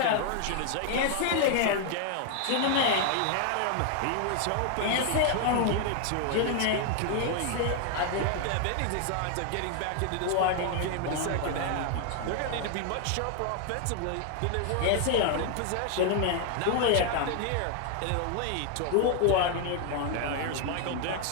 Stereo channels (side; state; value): both; different; correlation 0.00